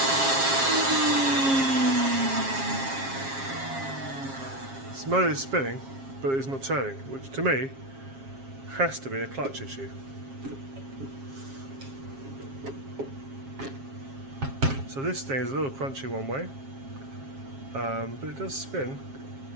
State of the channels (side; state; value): left; late; 7.4 ms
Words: This motor is spinning, but it's not turning, which to me has to be a clutch issue. So this thing is a little crunchy one way, but it does spin.